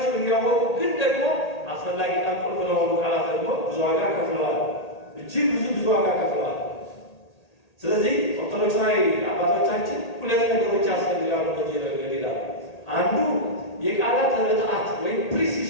እያወቁ ግን ደግሞ አስፈላጊና ቁልፍ ለሆኑ ቃላት ደግሞ ብዙ ዋጋ ከፍለዋል። እጅግ ብዙ ዋጋ ከፍለዋል። ስለዚህ ኦርቶዶክሳዊ አባቶቻችን ሁለት ነገሮች ያስፈልጋሉ በዚህ ረገድ ይላሉ። አንዱ የቃላት ርትዓት ወይም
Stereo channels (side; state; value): right; late; 1.8 ms